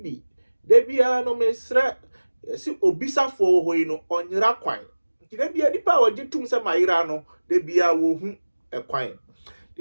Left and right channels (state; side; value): inverted; both; correlation -1.00